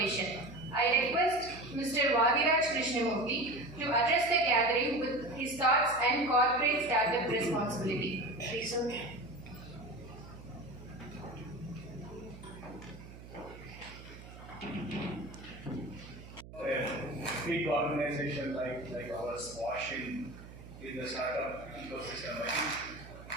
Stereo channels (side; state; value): right; noise; hum, 16 dB below the sound